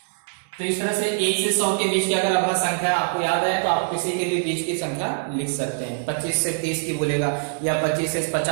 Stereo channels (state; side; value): silent; left; 63 dB below the other